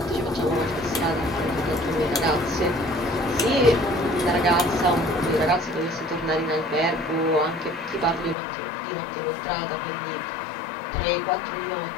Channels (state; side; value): drops out; right; at 8.3 s